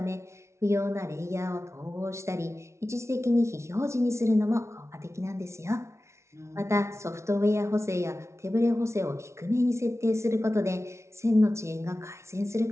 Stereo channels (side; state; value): left; late; 0.13 ms